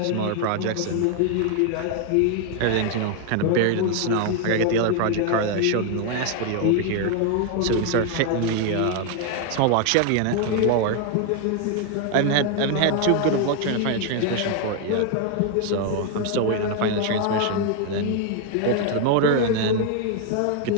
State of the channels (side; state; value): both; different; correlation 0.00